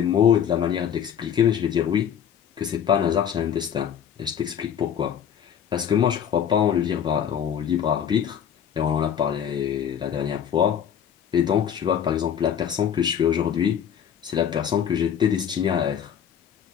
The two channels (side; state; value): right; quieter; 8.7 dB